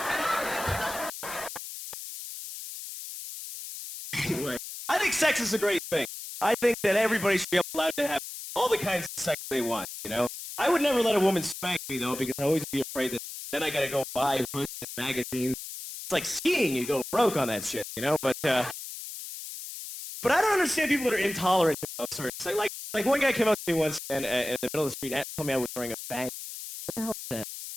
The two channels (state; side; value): noise; left; hiss, 10 dB below the sound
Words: Anyway, I think sex is a great thing. I think that everybody should be allowed to have all the kinds of sex they want, you know? I would never let a woman spank me, though, because I always be afraid that Then I gotta go buy books and magazines. It's like skiing, you go broke on that shit, you know? But I don't understand people that are intolerant to those sorts. Like one guy came up to me once and in the middle of the street and told me I was wearing a bag. What the hell is that?